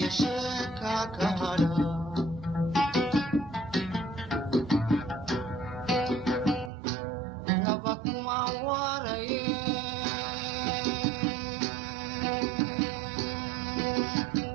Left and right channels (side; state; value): left; drops out; at 6.7 s